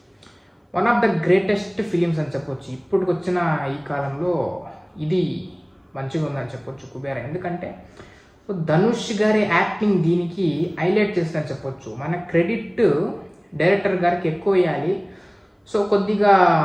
one of the greatest films అని చెప్పొచ్చు. ఇప్పటికి వచ్చిన ఈ కాలంలో ఇది మంచిగా ఉందని చెప్పొచ్చు కుబేరా. ఎందుకంటే ధనుష్ గారి యాక్టింగ్ దీనికి హైలైట్ చేసిందని చెప్పొచ్చు. మన క్రెడిట్ డైరెక్టర్ గారికి ఎక్కువ వేయాలి. సో కొద్దిగా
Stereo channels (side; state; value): both; identical; correlation 1.00